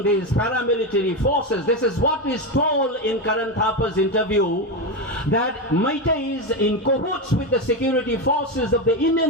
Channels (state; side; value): normal; both; correlation 0.13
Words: these paramilitary forces. This is what is told in Karan Thapa's interview, that Meiteis in cahoots with the security forces of the